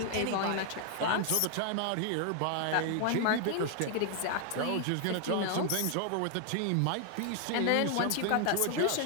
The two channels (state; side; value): different; both; correlation 0.00